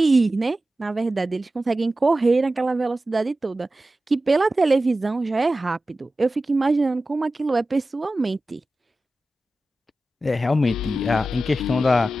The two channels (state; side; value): normal; both; correlation 0.94